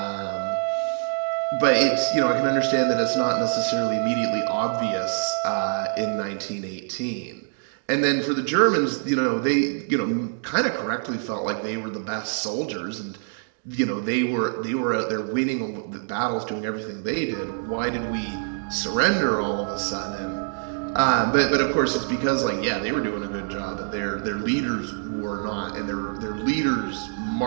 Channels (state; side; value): silent; left; 62 dB below the other